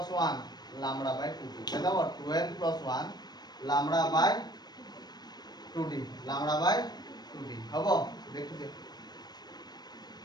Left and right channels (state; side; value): late; right; 0.19 ms